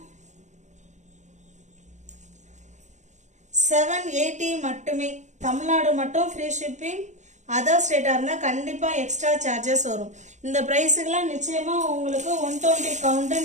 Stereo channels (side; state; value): left; late; 0.34 ms